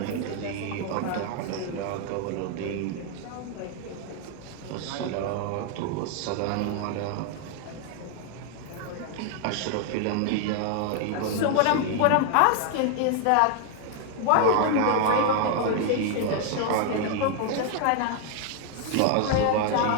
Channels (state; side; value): different; both; correlation 0.00